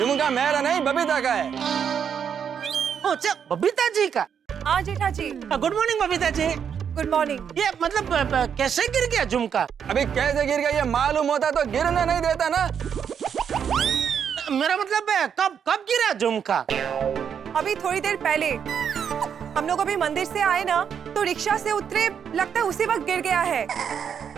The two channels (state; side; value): quieter; left; 7.7 dB